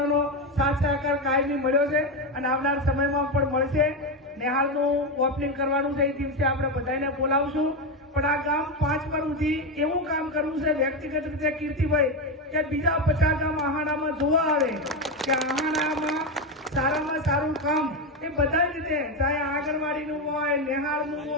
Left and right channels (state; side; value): normal; both; correlation 0.12